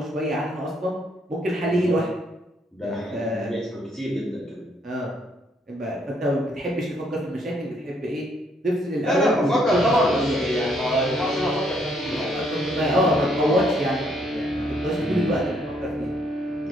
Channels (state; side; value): normal; both; correlation 0.69